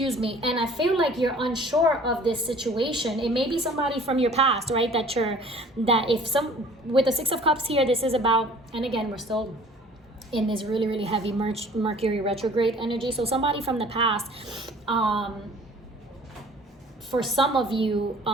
me. And I feel like you're unsure of this situation. It may be somebody from your past, right? With the Six of Cups here, this is about, and again, we're still in this really, really heavy Mercury retrograde energy. So somebody from the past, for some of you,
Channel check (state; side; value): normal; both; correlation 0.50